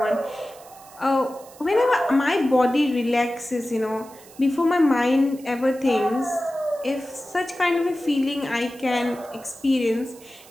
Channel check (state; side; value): noise; right; hiss, 23 dB below the sound